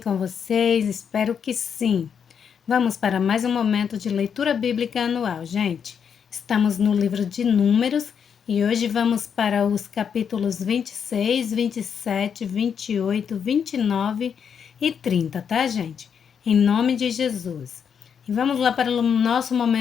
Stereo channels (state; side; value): quieter; right; 7.3 dB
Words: vocês? Espero que sim. Vamos para mais um momento de leitura bíblica anual, gente. Estamos no livro de Números e hoje vamos para os capítulos 26, 27, 28, 29 e 30, tá, gente? Em nome de Jesus. E vamos lá para o nosso